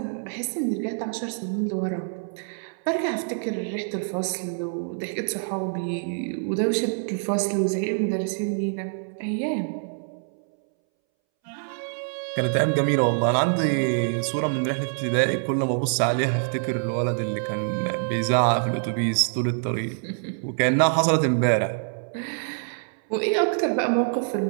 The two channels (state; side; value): silent; left; 61 dB below the other